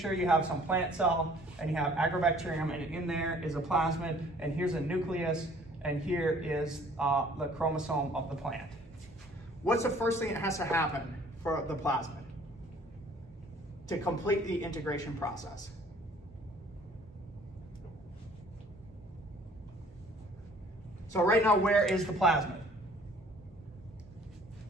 you have some plant cell and you have Agrobacterium, and in there is a plasmid, and here's a nucleus, and here is the chromosome of the plant. What's the first thing that has to happen for the plasmid to complete the integration process? So right now, where is the plasmid?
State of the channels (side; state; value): both; normal; correlation 0.55